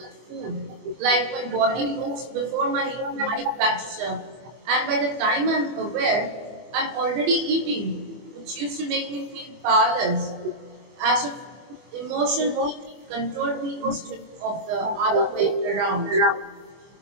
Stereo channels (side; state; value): left; late; 24 ms